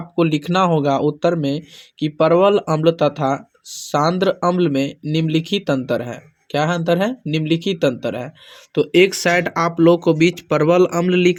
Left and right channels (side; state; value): both; identical; correlation 1.00